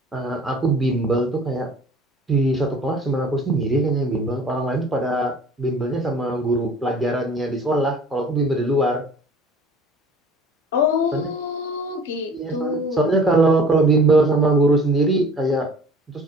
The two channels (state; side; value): normal; both; correlation 0.47